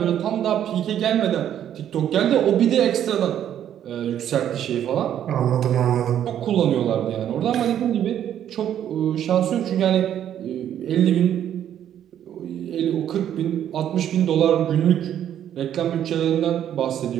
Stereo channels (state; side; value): quieter; left; 10.3 dB